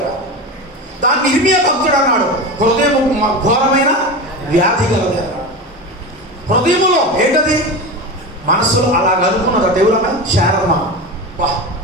దాన్ని ఇర్మియా భక్తుడు అన్నాడు, హృదయం ఘోరమైన వ్యాధి కలది అన్నాడు. హృదయములో ఏంటది? మనస్సులో అలా కనుక్కున్నది. దేవులమ్మ శారమ్మ వా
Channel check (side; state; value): both; normal; correlation 0.24